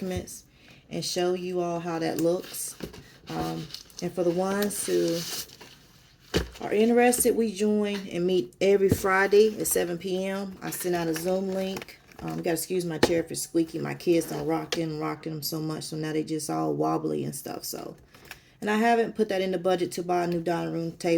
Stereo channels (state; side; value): identical; both; correlation 1.00